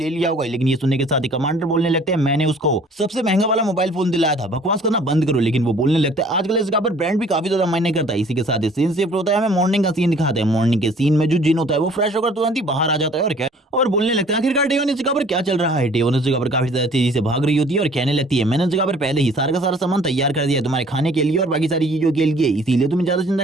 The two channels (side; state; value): both; normal; correlation 0.54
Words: लिया होगा। लेकिन ये सुनने के साथ ही कमांडर बोलने लगते हैं मैंने उसको सबसे महंगा वाला मोबाइल फोन दिलाया था, बकवास करना बंद करो। लेकिन वो बोलने लगता है आजकल इस जगह पर ब्रांड भी काफी ज्यादा मायने करता है। इसी के साथ ही सीन शिफ्ट होता है, हमें मॉर्निंग का सीन दिखाते हैं। मॉर्निंग के सीन में जो जिन होता है वो फ्रेश होकर तुरंत ही बाहर आ जाता है और क्या और बोलने लगता है आखिरकार डेवन इस जगह पर क्या चल रहा है। डेवन इस जगह पर काफी ज्यादा तेजी से भाग रही होती है और कहने लगती है मैंने इस जगह पर पहले ही सारा का सारा सामान तैयार कर दिया है तुम्हारे खाने के लिए और बाकी सारी चीजों के लिए, इसीलिए तुम्हें ज्यादा